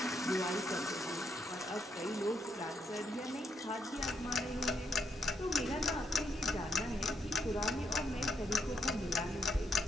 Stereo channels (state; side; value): normal; both; correlation 0.77